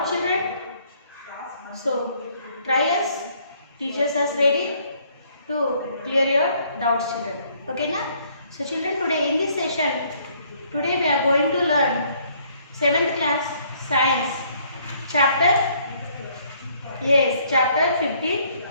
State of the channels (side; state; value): both; inverted; correlation -0.64